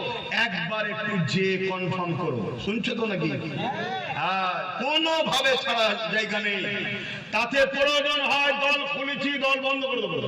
একবার একটু যে কনফার্ম করো। শুনছো তো নাকি? হ্যাঁ, কোনো ভাবে ছাড়া জায়গা নেই। তাতে প্রয়োজন হয় দল খুলেছি, দল বন্ধ করে দেবো,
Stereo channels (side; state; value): both; identical; correlation 1.00